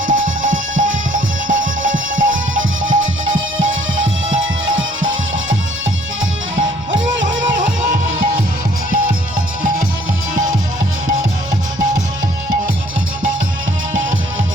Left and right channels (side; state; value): both; normal; correlation 0.60